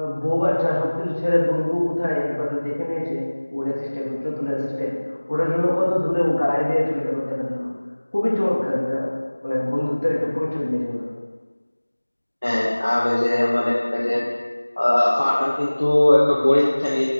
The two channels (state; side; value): inverted; both; correlation -1.00